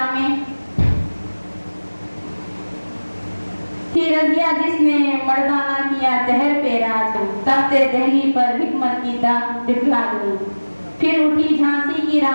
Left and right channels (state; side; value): inverted; both; correlation -1.00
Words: में। थी रजिया जिसने मर्दाना किया दहर पे राज। तख्ते दहली पर हिकमत की दाग दिखला गई। फिर उठी झांसी की